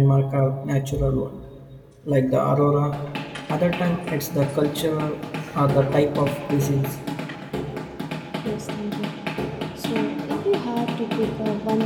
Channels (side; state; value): both; identical; correlation 1.00